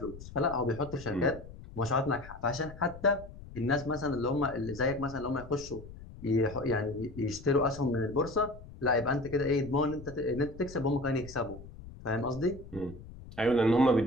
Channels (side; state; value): left; noise; rumble, 15 dB below the sound